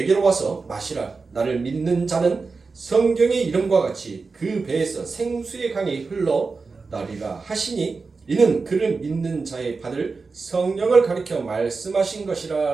와서 마시라. 나를 믿는 자는 성경의 이름과 같이 그 배에서 생수의 강이 흘러나리라 하시니 이는 그를 믿는 자의 받을 성령을 가리켜 말씀하신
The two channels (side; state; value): left; quieter; 4.3 dB